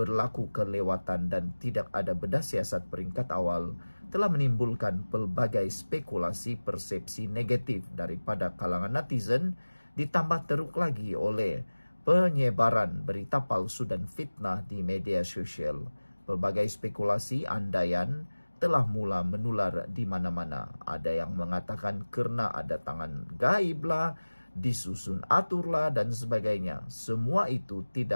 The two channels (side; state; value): both; inverted; correlation -1.00